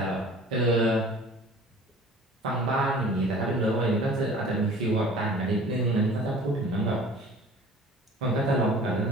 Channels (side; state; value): both; normal; correlation 0.46